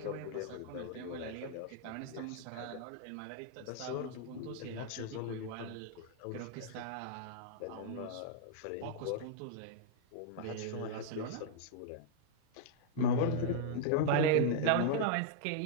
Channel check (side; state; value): both; different; correlation -0.01